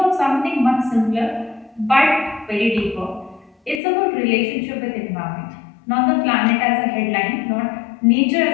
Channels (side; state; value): right; drops out; at 3.8 s